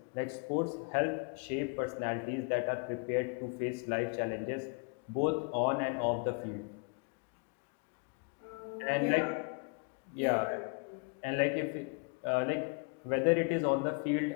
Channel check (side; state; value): right; quieter; 34.8 dB